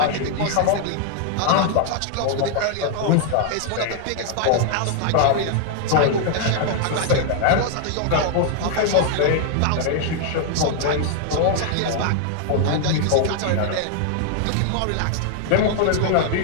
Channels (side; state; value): both; different; correlation 0.00